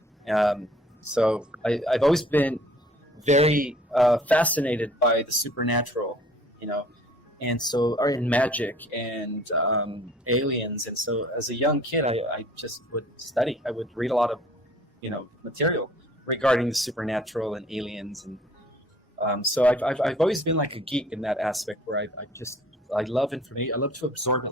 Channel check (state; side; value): normal; both; correlation 0.53